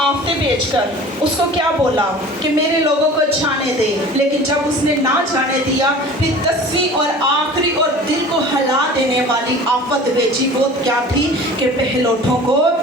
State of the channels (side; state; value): both; normal; correlation 0.42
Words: भेजकर उसको क्या बोला कि मेरे लोगों को जाने दे। लेकिन जब उसने ना जाने दिया, फिर 10वीं और आखिरी और दिल को हिला देने वाली आफत भेजी। वो क्या थी? कि पहलोठों को